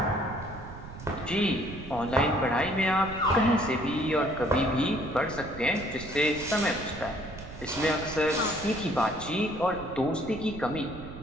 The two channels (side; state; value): right; noise; rumble, 13 dB below the sound